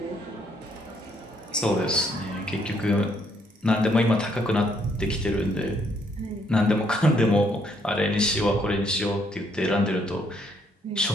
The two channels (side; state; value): both; normal; correlation 0.70